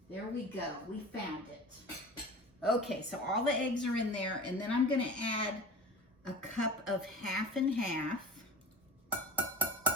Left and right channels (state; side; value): normal; both; correlation 0.36